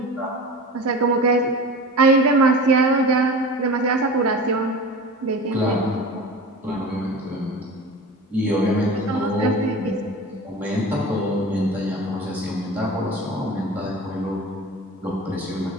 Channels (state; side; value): normal; both; correlation 0.34